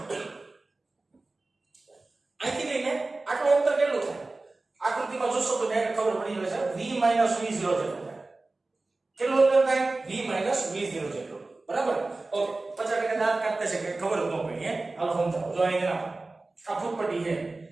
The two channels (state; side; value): quieter; left; 3.2 dB